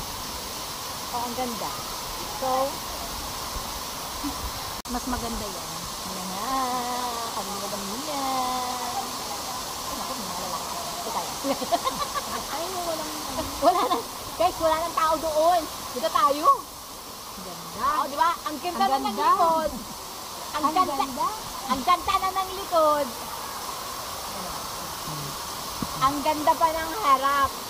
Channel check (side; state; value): both; identical; correlation 1.00